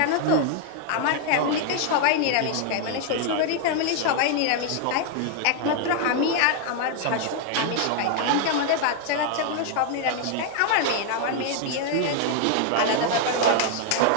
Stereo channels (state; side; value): different; both; correlation 0.00